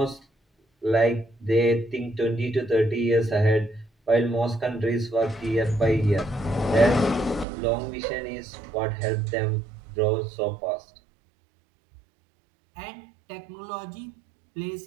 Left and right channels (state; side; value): drops out; left; at 7.5 s